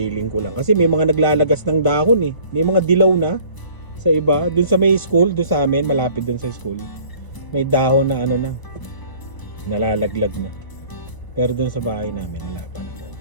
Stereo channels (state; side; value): late; right; 1.0 ms